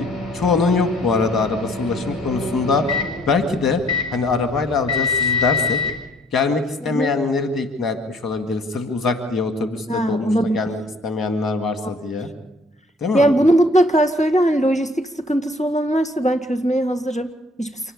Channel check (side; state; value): both; normal; correlation 0.58